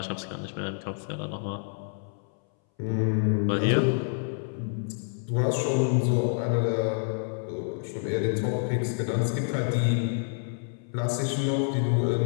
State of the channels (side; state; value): right; silent; 59 dB below the other